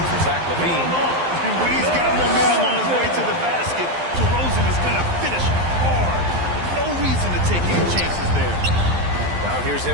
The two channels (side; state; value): left; late; 12 ms